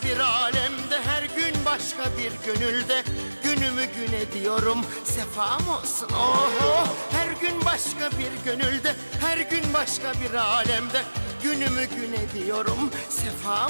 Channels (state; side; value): inverted; both; correlation -1.00